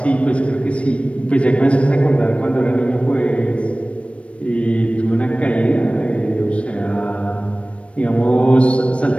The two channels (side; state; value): right; late; 0.062 ms